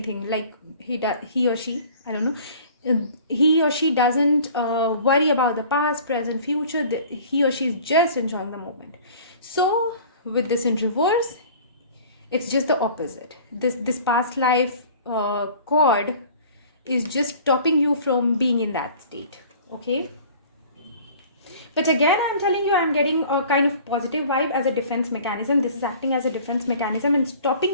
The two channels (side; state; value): both; inverted; correlation -0.47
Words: like he or she, I don't know, he or she doesn't worry about the past, present, future. He or she is just enjoying the moment. So with this in reverse, it's just the opposite. This past life cord is just stopping you from being in that state, okay? But again, I'm telling you, I'm getting a kind of positive vibe as a defense mechanism. This is acting as a defense mechanism and